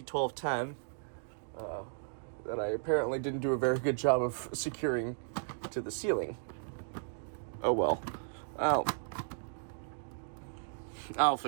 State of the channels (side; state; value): left; silent; digital silence